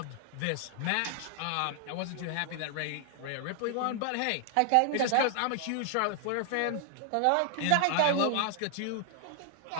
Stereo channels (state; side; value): different; both; correlation 0.00